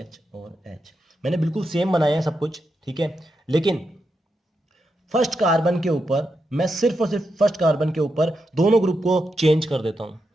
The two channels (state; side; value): normal; both; correlation 0.85